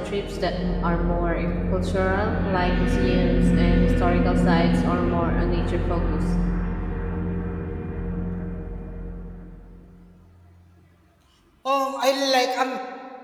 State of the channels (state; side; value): identical; both; correlation 1.00